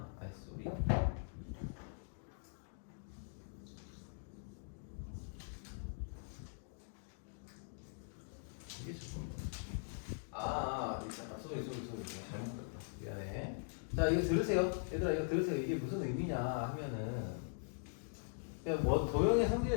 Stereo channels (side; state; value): right; silent; digital silence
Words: 아이 쏘리. 이게 조금 쏘리 잘못했다. 미안해. 자, 이거 들으세요. 얘들아 이거 들으세요. 이게 무슨 의미냐 하면은 그냥 뭐 도형의